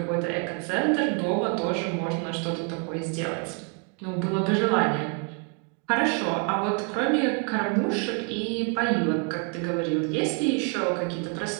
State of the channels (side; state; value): left; quieter; 36.9 dB